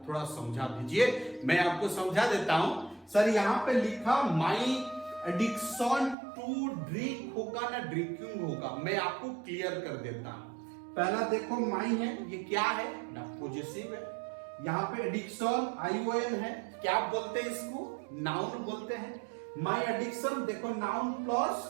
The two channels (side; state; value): left; drops out; at 6.2 s